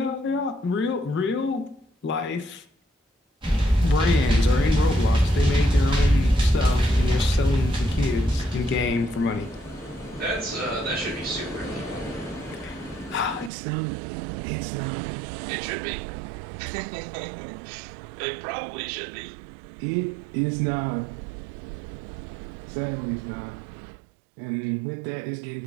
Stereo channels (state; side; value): drops out; left; at 13.5 s